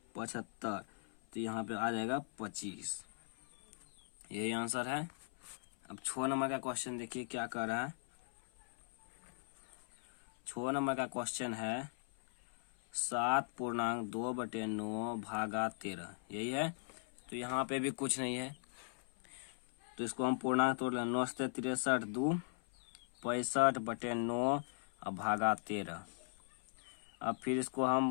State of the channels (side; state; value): right; silent; 52 dB below the other